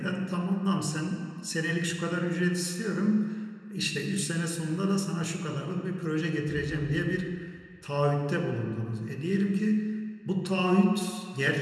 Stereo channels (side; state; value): both; identical; correlation 1.00